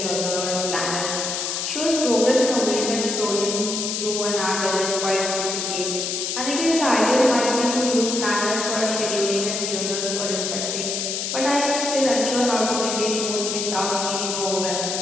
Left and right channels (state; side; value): noise; left; hiss, 2 dB below the sound